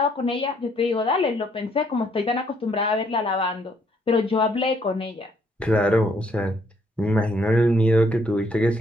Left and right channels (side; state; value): both; normal; correlation 0.68